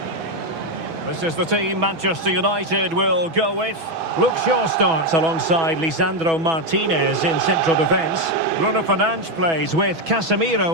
This is the team Manchester United will go with. Luke Shaw starts alongside Lisandro Martinez in central defence. Bruno Fernandes plays with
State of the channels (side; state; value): left; late; 6.1 ms